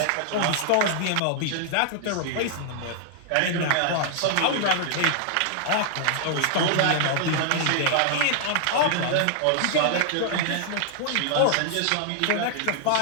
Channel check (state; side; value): different; both; correlation -0.01